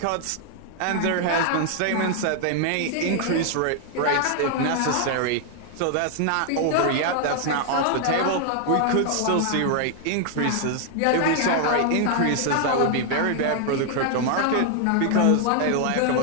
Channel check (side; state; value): both; different; correlation 0.00